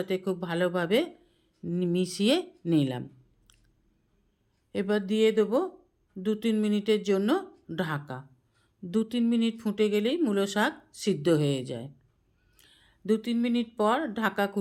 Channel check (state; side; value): identical; both; correlation 1.00